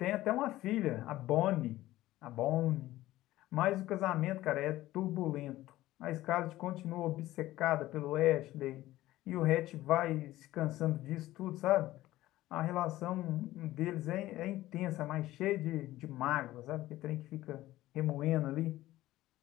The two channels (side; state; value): right; quieter; 16.0 dB